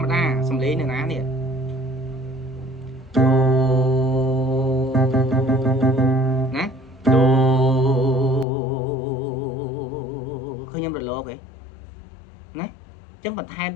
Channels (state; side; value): drops out; right; at 8.5 s